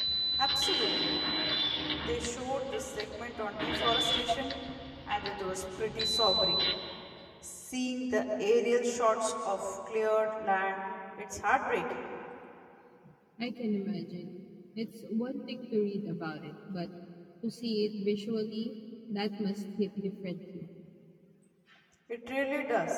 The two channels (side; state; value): both; identical; correlation 1.00